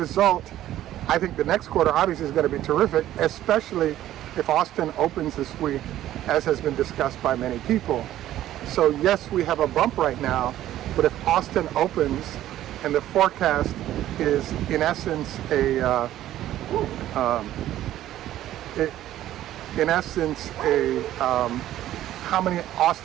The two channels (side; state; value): left; quieter; 13.2 dB